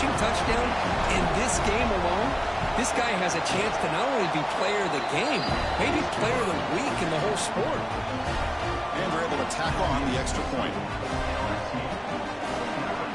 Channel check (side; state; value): both; identical; correlation 1.00